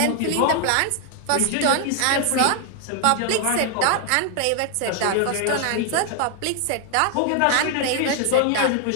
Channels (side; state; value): both; different; correlation 0.00